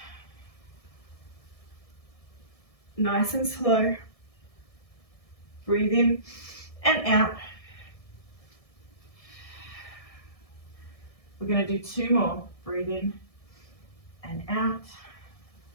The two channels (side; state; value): right; late; 1.6 ms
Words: Nice and slow. Breathe in and out. We're going to do 2 more. Breathe in and out.